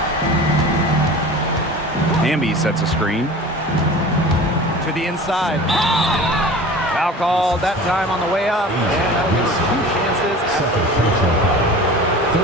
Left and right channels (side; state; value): both; normal; correlation 0.38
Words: Hamby sets a screen. To the inside. Foul called that time on the way up. And that'll give her 2 chances.